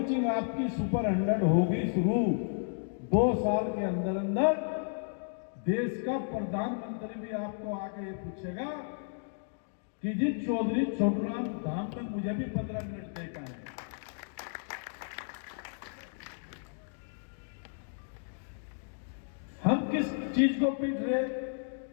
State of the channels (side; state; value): right; silent; digital silence